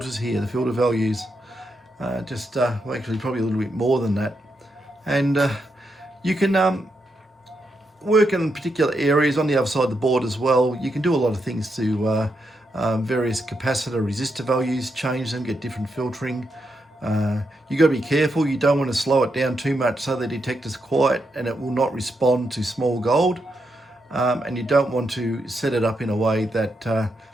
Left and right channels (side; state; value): both; normal; correlation 0.83